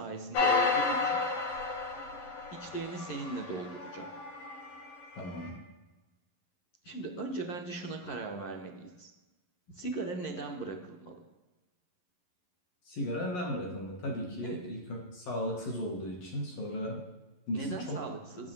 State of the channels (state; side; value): late; right; 11 ms